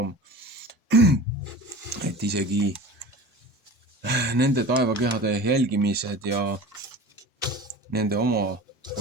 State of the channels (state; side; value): normal; both; correlation 0.37